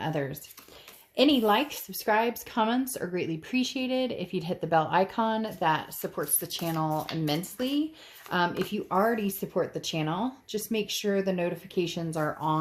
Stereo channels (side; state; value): both; identical; correlation 1.00